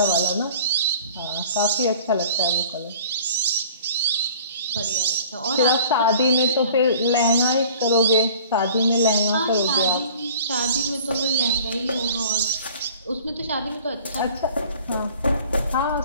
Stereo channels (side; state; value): both; inverted; correlation -0.48